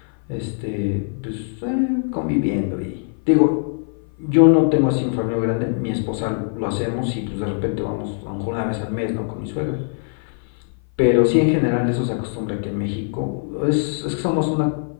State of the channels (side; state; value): right; silent; 56 dB below the other